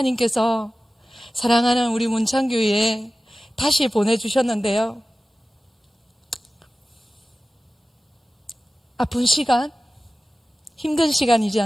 사랑하는 우리 문창교회에 다시 보내주셨는데요, 아픈 시간, 힘든 시간이지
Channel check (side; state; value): both; normal; correlation 0.95